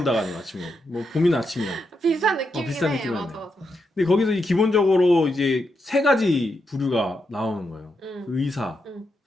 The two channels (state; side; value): normal; both; correlation 0.83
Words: 아니고 아침이 온다. 뭐 봄이나 아침이나. 비슷한 느낌이긴 비슷한 해. 느낌이네. 맞아. 근데 거기서 기본적으로 이제 세 가지 부류가 나오는 거예요. 의사,